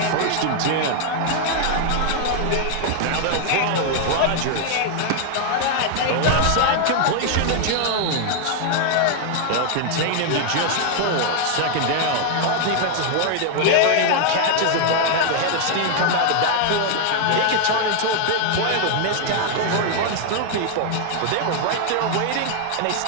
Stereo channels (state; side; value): different; both; correlation 0.00